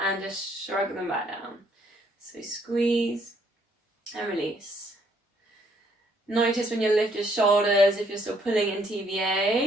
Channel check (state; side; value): normal; both; correlation 0.67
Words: and just shrug them back down. So squeeze and release. Notice when you lift your shoulders if you're still pulling in